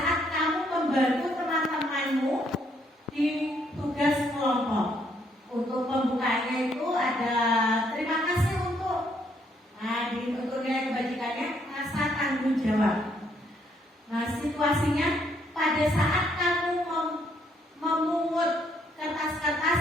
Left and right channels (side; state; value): both; normal; correlation 0.70